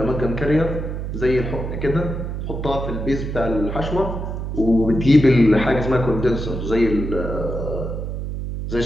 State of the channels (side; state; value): right; noise; hum, 5 dB below the sound